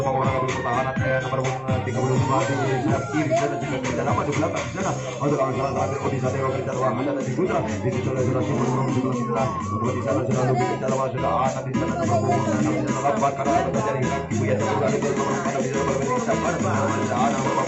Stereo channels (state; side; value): identical; both; correlation 1.00